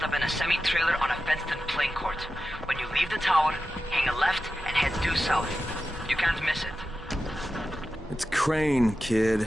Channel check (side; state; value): both; normal; correlation 0.92